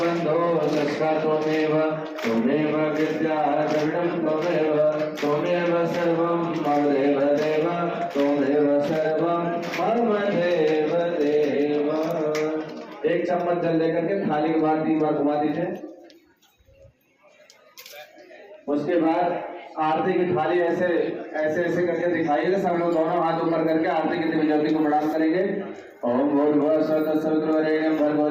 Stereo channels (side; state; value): both; identical; correlation 1.00